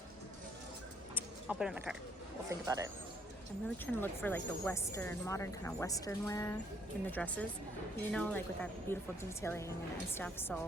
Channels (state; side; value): normal; both; correlation 0.66